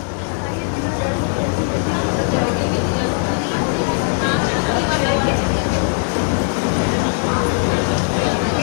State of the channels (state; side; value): silent; right; 57 dB below the other